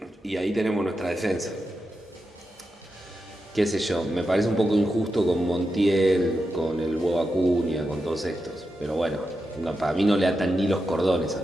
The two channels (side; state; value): both; normal; correlation 0.88